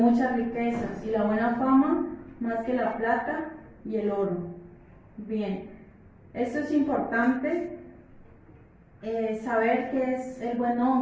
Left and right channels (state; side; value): identical; both; correlation 1.00